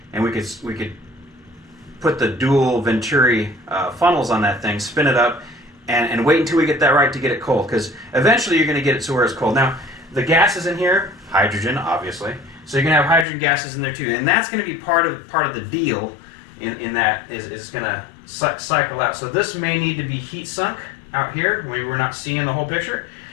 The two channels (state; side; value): drops out; right; at 13.2 s